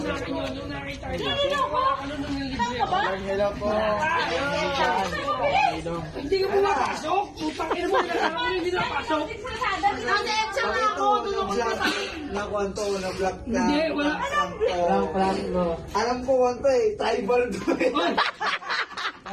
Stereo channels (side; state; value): both; identical; correlation 1.00